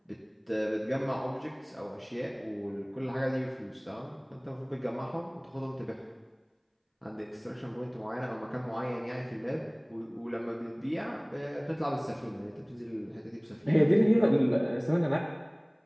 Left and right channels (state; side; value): identical; both; correlation 1.00